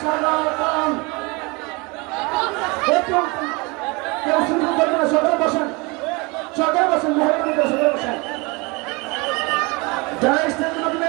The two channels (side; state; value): left; quieter; 27.4 dB